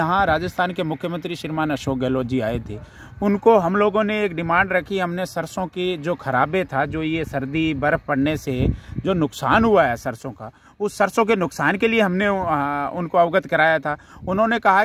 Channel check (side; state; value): both; identical; correlation 1.00